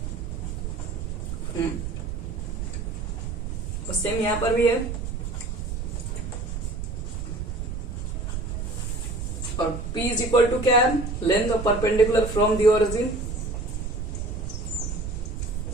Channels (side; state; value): right; noise; rumble, 4 dB below the sound